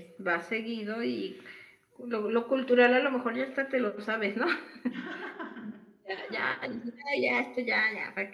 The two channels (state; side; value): identical; both; correlation 1.00